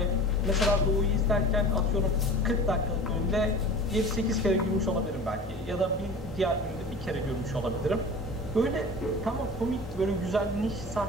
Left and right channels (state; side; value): normal; both; correlation 0.38